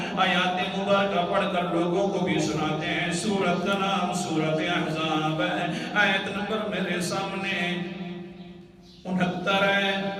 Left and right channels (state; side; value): identical; both; correlation 1.00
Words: آیات مبارکہ پڑھ کر لوگوں کو بھی سناتے ہیں. سورت کا نام سورت احزاب ہے. آیت نمبر میرے سامنے 69 ہے.